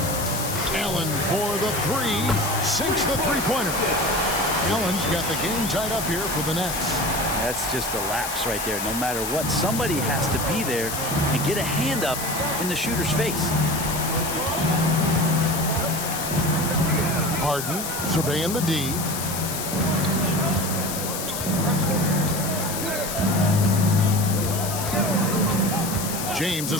Allen for the 3. Sinks the three-pointer. Allen's got the game tied up here for the Nets. That's just a lapse right there. No matter what, somebody has to be there and get a hand up in the shooter's face. Harden surveying the D. James a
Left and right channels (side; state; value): left; noise; hiss, 5 dB below the sound